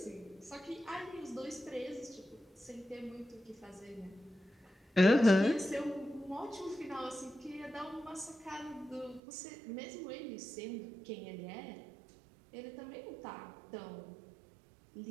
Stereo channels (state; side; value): drops out; left; at 9.2 s